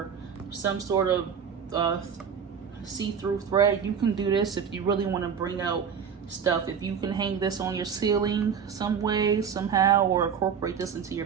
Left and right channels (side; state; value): left; quieter; 7.1 dB